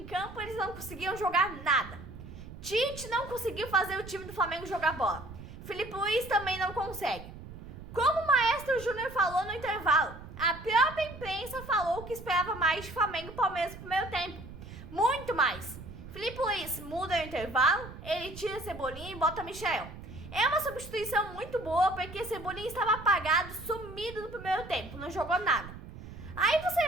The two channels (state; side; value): noise; right; rumble, 14 dB below the sound